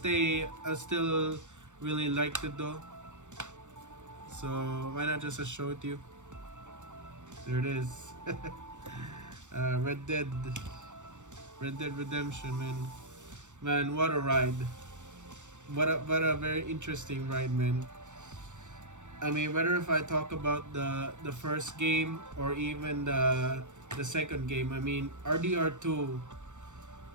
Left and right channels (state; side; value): late; left; 0.85 ms